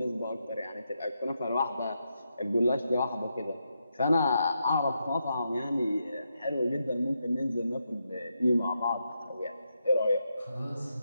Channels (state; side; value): inverted; both; correlation -0.83